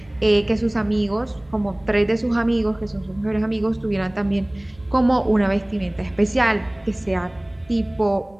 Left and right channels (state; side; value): noise; right; rumble, 29 dB below the sound